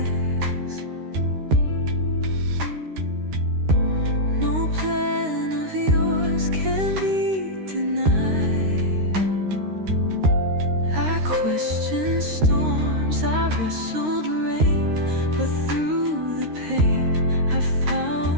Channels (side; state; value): left; late; 13 ms